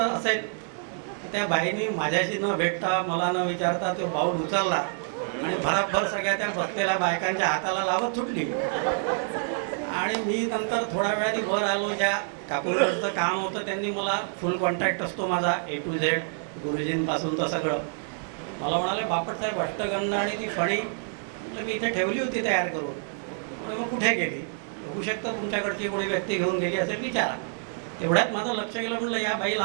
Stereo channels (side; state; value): left; silent; 60 dB below the other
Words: असेल. त्या बाईनी माझ्याशी न भेटता, मला न विचारता तो बाऊल उचलला आणि भराभर सगळ्या त्या बसलेल्या बायकांच्या हाताला लावत सुटली. आणि मी नंतर थोड्या वेळाने वर आलो. ज्या काकूंकडचं काम होतं त्यांनी मला, फुल कॉन्ट्रॅक्ट असतो माझा A to Z, गुरुजींपासून तर सगळं. मला म्हणाले बापटसाहेब अष्टगंध आणि ती फणी मी इथे ठेवली होती तयार करून. म्हणजे मग कुठे गेली. होऊ शकतं तुमच्याकडची कोणी व्यक्ती घेऊन गेली असेल, विचारा. तेवढ्यात माझं लक्ष गेलं. म्हटलं या बाई